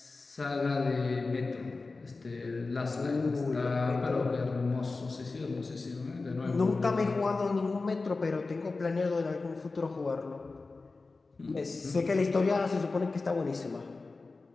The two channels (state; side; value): quieter; right; 3.8 dB